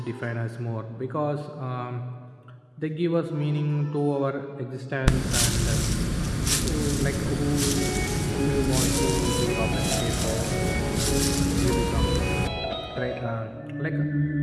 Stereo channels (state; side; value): identical; both; correlation 1.00